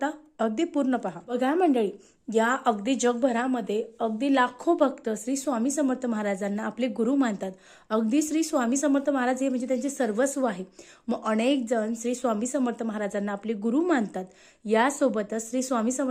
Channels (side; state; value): both; identical; correlation 1.00